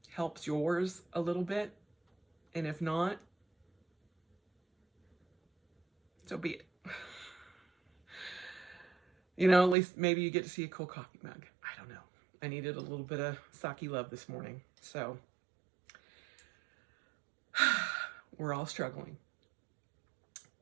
helps yours a little bit. And if not, so be it. You know, at least maybe you get to see a cool coffee mug. I don't know. I needed a little bit of sake love this morning. So we're all struggling.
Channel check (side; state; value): left; drops out; at 9.8 s